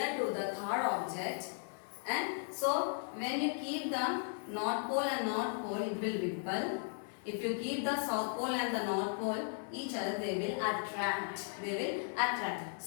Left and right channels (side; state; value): right; silent; 53 dB below the other